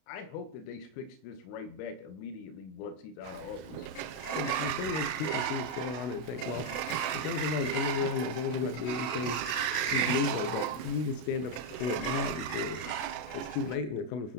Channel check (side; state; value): right; late; 32 ms